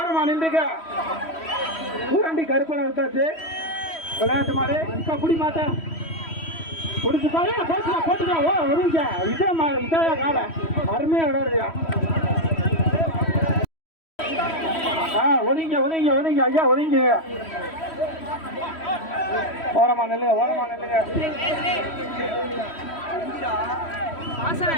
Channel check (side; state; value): right; late; 3.1 ms